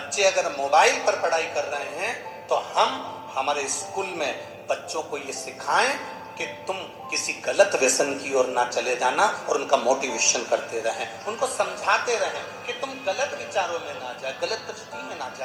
अगर मोबाइल पर पढ़ाई कर रहे हैं तो हम हमारे स्कूल में बच्चों को ये सिखाएं कि तुम किसी गलत व्यसन की ओर ना चले जाना, और उनका मोटिवेशन करते रहें, उनको समझाते रहें कि तुम गलत विचारों में ना जाए, गलत दृष्टि में ना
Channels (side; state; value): both; identical; correlation 1.00